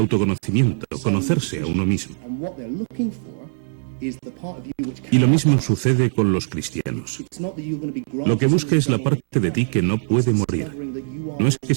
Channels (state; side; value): silent; left; digital silence